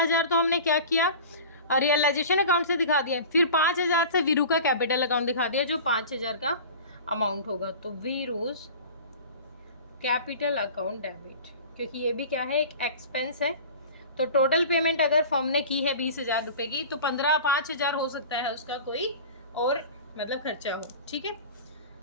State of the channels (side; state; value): both; inverted; correlation -0.38